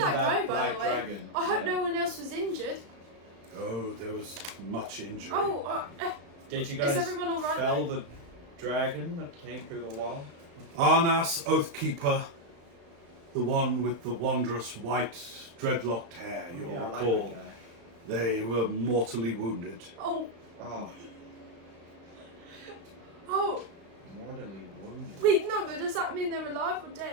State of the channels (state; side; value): late; left; 34 ms